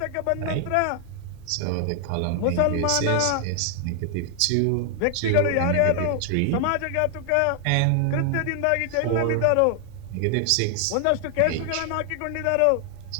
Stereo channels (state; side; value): different; both; correlation 0.00